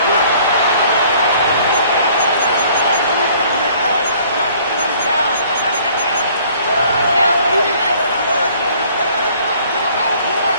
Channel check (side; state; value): both; inverted; correlation -0.56